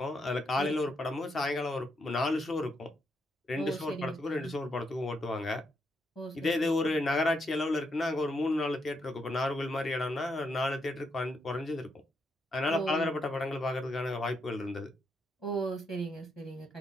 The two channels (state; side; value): normal; both; correlation 0.79